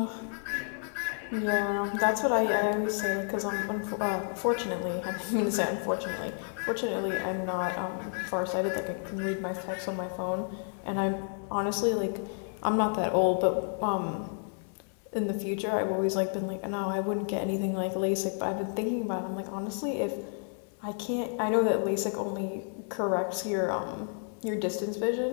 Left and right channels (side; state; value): right; silent; 57 dB below the other